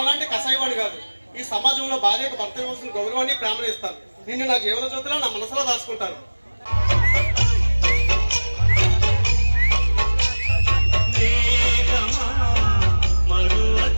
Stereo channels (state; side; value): inverted; both; correlation -1.00